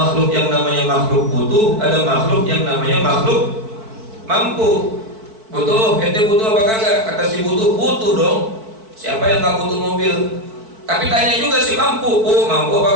yang namanya makhluk butuh, ada makhluk yang namanya makhluk mampu. Butuh, ente butuh apa kagak? Kata si butuh dong. Siapa yang gak butuh mobil? Tapi tanya juga si mampu, mampu apa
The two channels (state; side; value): late; left; 4.5 ms